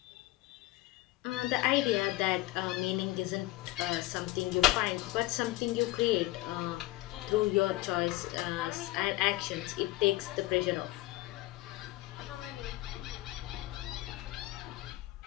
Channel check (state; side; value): quieter; right; 17.9 dB